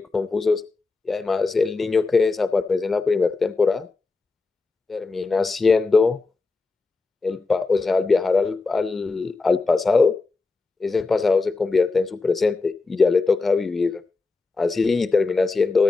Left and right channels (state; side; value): quieter; right; 3.9 dB